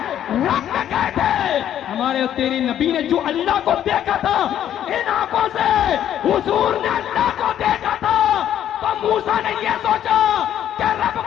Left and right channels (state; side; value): quieter; right; 10.7 dB